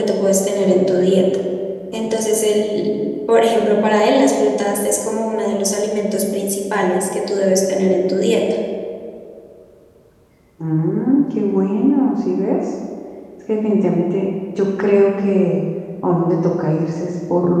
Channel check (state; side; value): identical; both; correlation 1.00